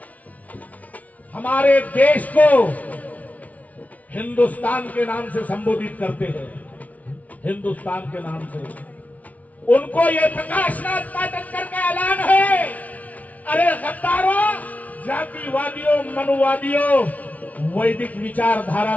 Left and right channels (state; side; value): late; right; 0.070 ms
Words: हमारे देश को हिंदुस्तान के नाम से संबोधित करते हैं, हिंदुस्तान के नाम से। उनको ये प्रकाशनाथ पाठक करके ऐलान है, अरे गद्दारों, जातिवादियों, मनुवादियों, वैदिक विचारधारा